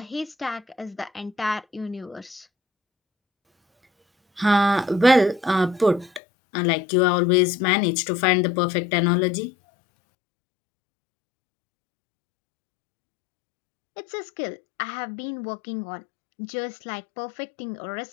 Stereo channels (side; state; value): right; drops out; at 6.2 s